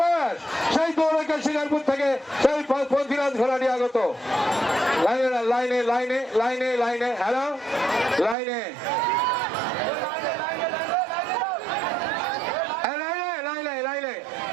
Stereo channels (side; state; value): left; drops out; at 8.3 s